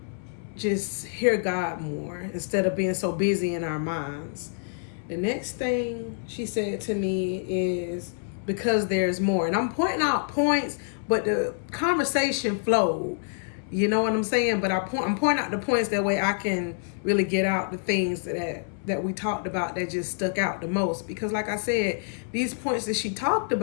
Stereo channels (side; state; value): right; silent; 60 dB below the other